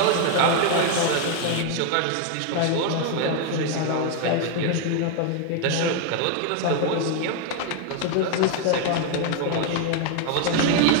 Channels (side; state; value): both; different; correlation 0.01